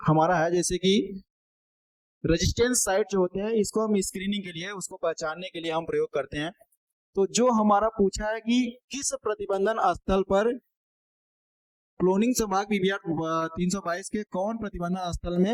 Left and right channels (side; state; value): both; identical; correlation 1.00